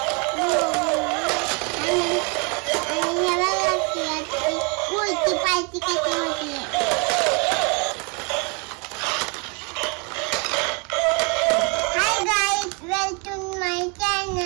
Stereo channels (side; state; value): left; quieter; 33.8 dB